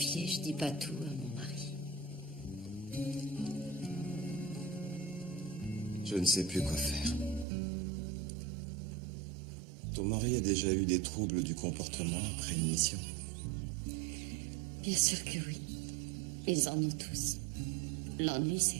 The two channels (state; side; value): drops out; left; at 7.5 s